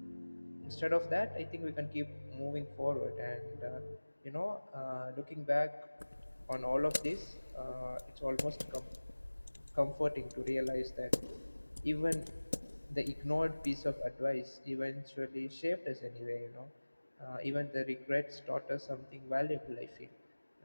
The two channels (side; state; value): both; inverted; correlation -1.00